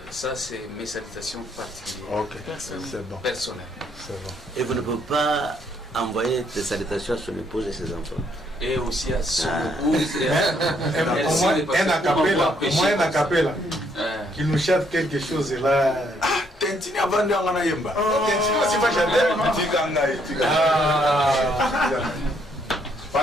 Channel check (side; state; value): both; normal; correlation 0.70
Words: Ça, c'est mes salutations particulières. Ok, c'est bon. Personnelles. C'est bon. Et vous ne pouvez pas envoyer des salutations à son épouse et ses enfants. Et aussi à son épouse. Au moins un acapella. Qui nous chante quelque chose là. Ah, Tentini avant de en ayemba. Tentini aussi va chanter. Ah.